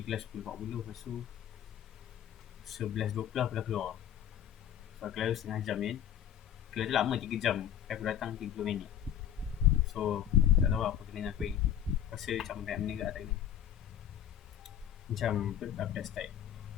kelas 10.40. Lepas tu 11.20 aku dah keluar. So kelas tu setengah jam kan. Kelas tu lama 3 jam. Aku datang 30 minit. So tak tahu apa kena dengan aku ni. Rasa macam banyak benda kat tak kena. Macam aku dah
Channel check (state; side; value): quieter; right; 10.0 dB